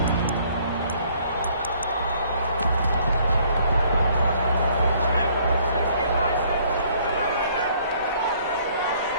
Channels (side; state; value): both; inverted; correlation -0.61